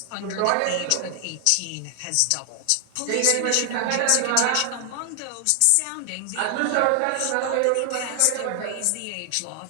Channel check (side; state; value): both; different; correlation 0.00